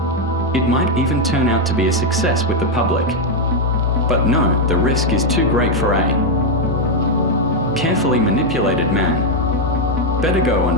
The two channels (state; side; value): normal; both; correlation 0.02